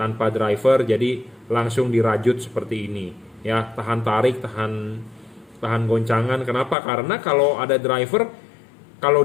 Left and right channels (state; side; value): drops out; right; at 6.8 s